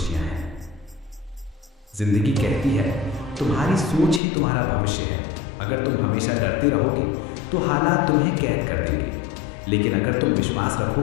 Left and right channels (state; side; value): drops out; right; at 4.2 s